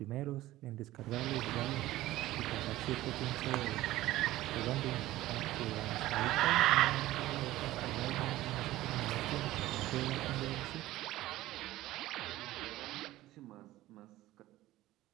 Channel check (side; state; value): left; quieter; 16.1 dB